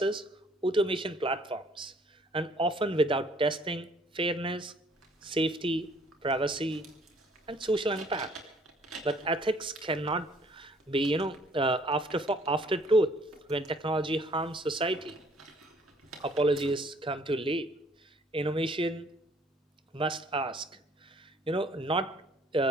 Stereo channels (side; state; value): both; normal; correlation 0.59